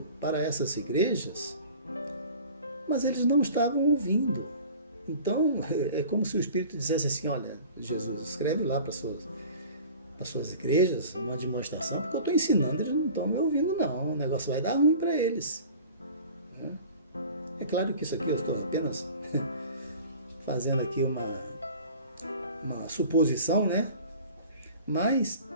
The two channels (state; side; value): inverted; both; correlation -0.43